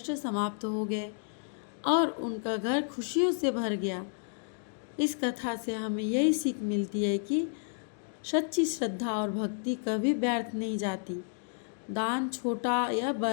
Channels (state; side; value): silent; right; 57 dB below the other